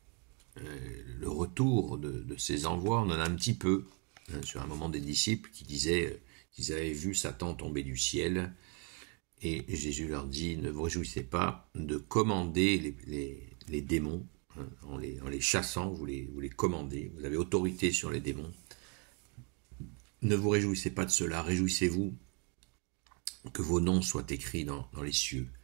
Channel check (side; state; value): left; quieter; 32.3 dB